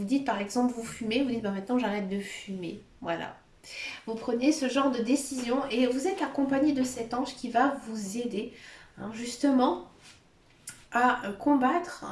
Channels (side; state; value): both; identical; correlation 1.00